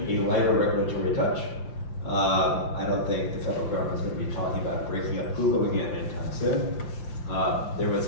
a lighter regulatory touch. I don't think the federal government's going to be talking about breaking up Google again anytime soon. There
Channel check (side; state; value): right; late; 5.8 ms